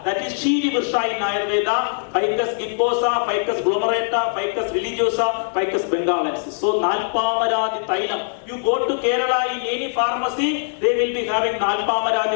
that is Chidi Virsha in Ayurveda, Ficus gimbosa, Ficus glomerata, Ficus religiosa, Ficus bengalensis. So Nalpamaradi Thailam. You go to Kerala in any pharmacy, they will be having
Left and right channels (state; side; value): silent; right; digital silence